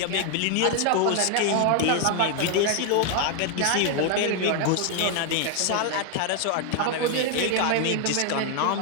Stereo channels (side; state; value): both; different; correlation 0.00